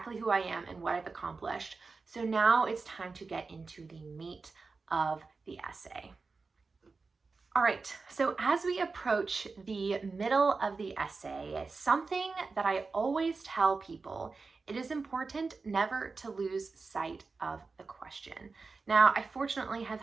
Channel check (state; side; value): quieter; left; 4.2 dB